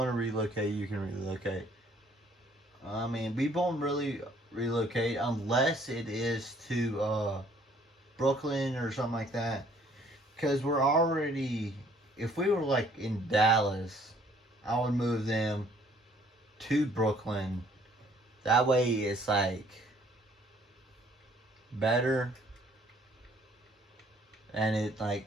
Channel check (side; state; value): both; normal; correlation 0.61